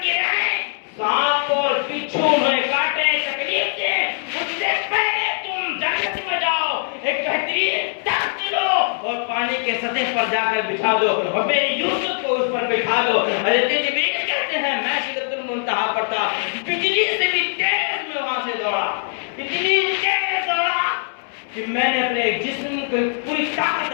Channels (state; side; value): silent; right; 65 dB below the other